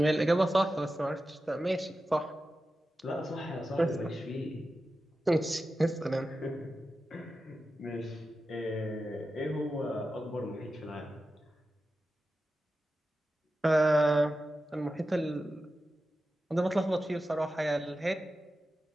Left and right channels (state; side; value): normal; both; correlation 0.92